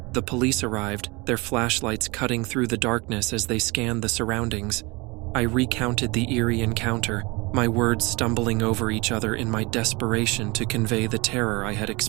The police arrived, their flashlights cutting through the darkness as they scanned the surroundings. I recounted the eerie encounter, my words stumbling over each other in my desperation to convey the terror I had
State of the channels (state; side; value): quieter; left; 25.8 dB